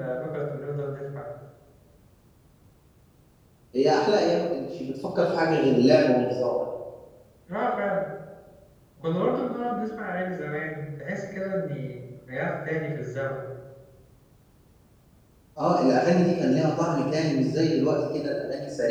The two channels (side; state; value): both; identical; correlation 1.00